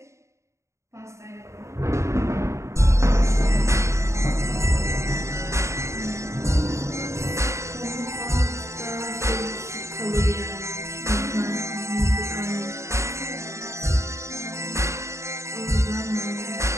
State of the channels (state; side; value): late; left; 0.14 ms